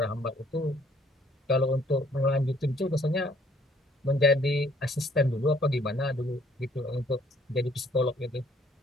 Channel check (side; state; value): both; normal; correlation 0.61